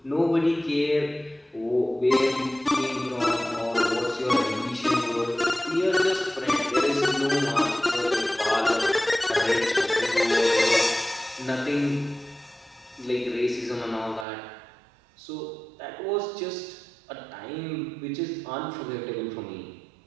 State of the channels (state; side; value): drops out; left; at 14.2 s